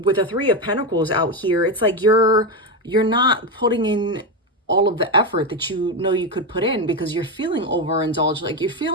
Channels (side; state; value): both; normal; correlation 0.11